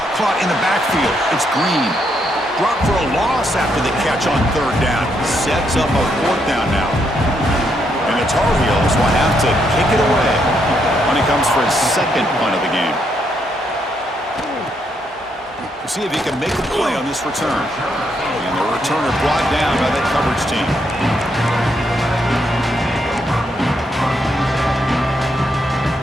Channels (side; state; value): both; normal; correlation 0.77